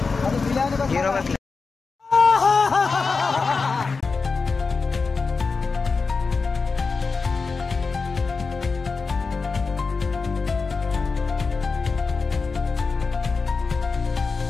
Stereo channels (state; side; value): quieter; right; 4.5 dB